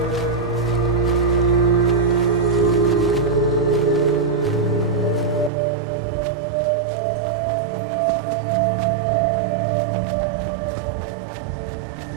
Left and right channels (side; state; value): left; drops out; at 5.5 s